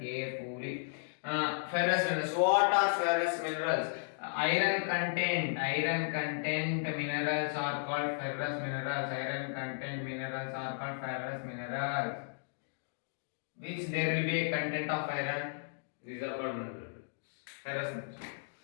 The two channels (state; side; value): silent; right; digital silence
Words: Ferrous minerals. What are ferrous minerals? Iron content minerals are called ferrous minerals. Iron content minerals are called ferrous minerals. Which there will be a content of iron. These are called minerals. Ferrous minerals.